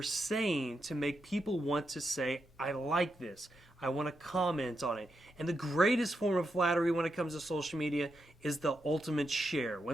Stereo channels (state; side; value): normal; both; correlation 0.85